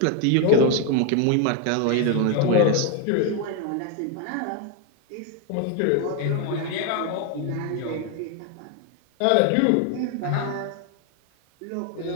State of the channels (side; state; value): both; different; correlation 0.01